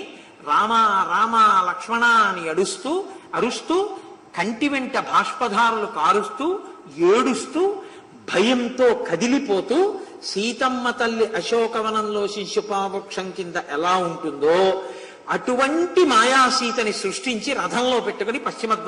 రామ రామ లక్ష్మణ అని అరుస్తూ కంటి వెంట బాష్పధారులు కారుస్తూ ఏడుస్తూ భయంతో కదిలిపోతూ సీతమ్మ తల్లి అశోకవనంలో శిశుపావృక్షం కింద ఎలా ఉంటుందో అటువంటి మాయాసీతని సృష్టించి రథంలో పెట్టుకుని పశ్చిమ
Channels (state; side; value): identical; both; correlation 1.00